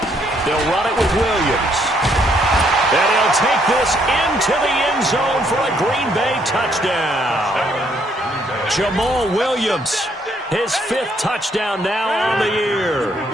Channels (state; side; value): normal; both; correlation 0.70